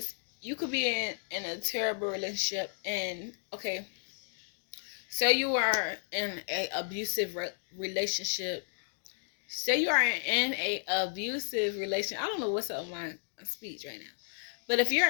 you could be in a terrible relationship and, okay, say you are in a abusive relationship. Say you are in a abusive relationship. I don't know what's up with my speech right now. But if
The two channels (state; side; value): silent; right; digital silence